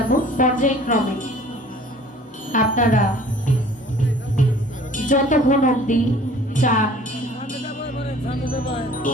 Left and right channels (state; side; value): normal; both; correlation 0.50